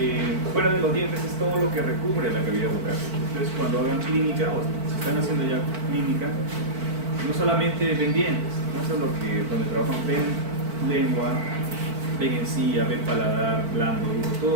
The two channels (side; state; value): left; late; 4.5 ms